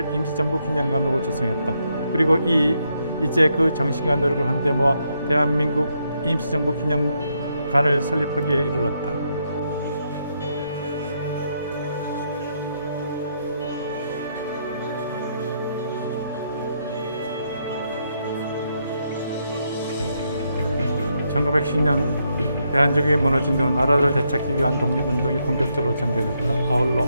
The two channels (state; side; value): inverted; both; correlation -0.78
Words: 임시정부 기념관으로 조성했다. 그리고 이제 그 정신과 노력을 한데 모아 대한민국 임시정부 기념관을 설립하기에 이르렀다. (1910년) 대한민국이 무너진 후 나라를 되찾기 위한 독립운동이 본격적으로 전개됐다. 아울러